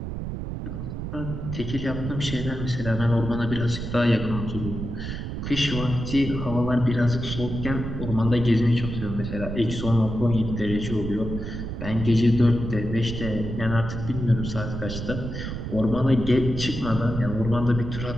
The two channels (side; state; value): right; noise; rumble, 6 dB below the sound